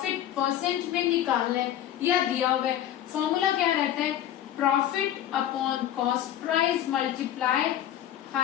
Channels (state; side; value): quieter; right; 11.4 dB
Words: परसेंट में निकालना है या दिया हुआ है, फॉर्मूला क्या रहता है, profit upon cost price multiply